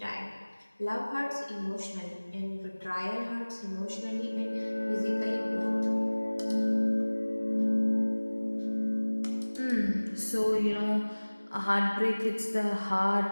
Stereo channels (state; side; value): inverted; both; correlation -1.00